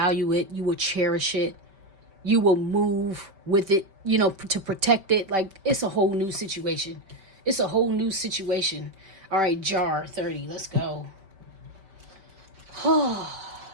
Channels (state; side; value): late; left; 5.2 ms